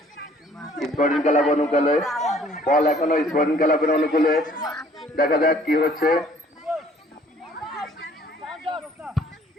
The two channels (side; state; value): both; normal; correlation 0.58